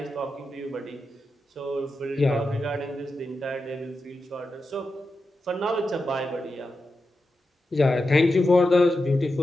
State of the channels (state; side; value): normal; both; correlation 0.89